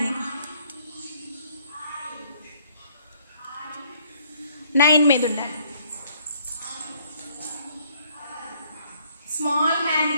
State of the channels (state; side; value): inverted; both; correlation -0.64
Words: మీద ఉండాలి. స్మాల్ హ్యాండ్